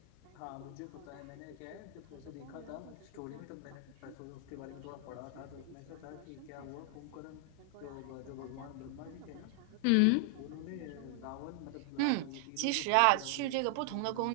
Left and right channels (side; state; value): both; different; correlation 0.00